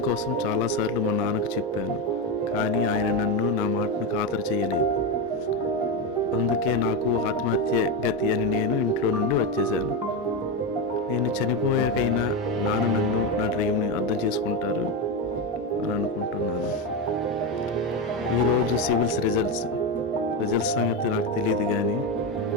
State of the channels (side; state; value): both; normal; correlation 0.12